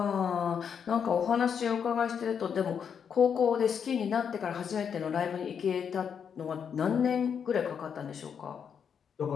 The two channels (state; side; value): quieter; right; 7.3 dB